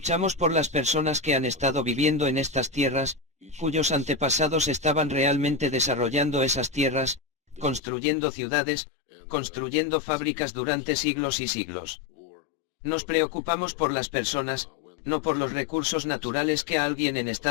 por las personas que han estado viviendo en estas tierras, cuyos antepasados estaban realmente desarrollando esas tierras, construyendo ciudades, construyendo fábricas durante siglos y siglos. Nos preocupamos por las personas, no por los recursos naturales que a alguien en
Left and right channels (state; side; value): drops out; right; at 7.8 s